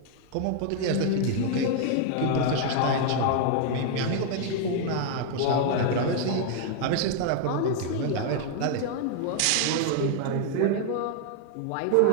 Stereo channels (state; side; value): different; both; correlation 0.00